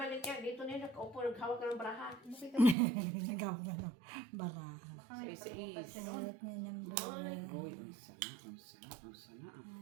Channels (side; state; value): left; drops out; at 2.8 s